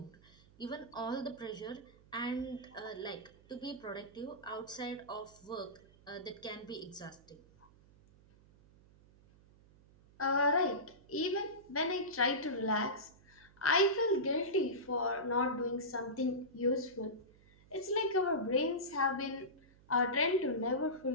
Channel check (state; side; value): noise; right; hum, 26 dB below the sound